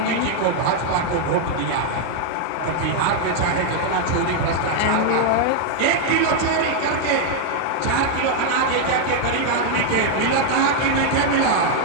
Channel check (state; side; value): different; both; correlation 0.00